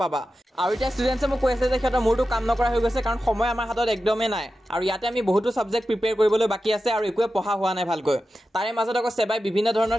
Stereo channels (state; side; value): normal; both; correlation 0.92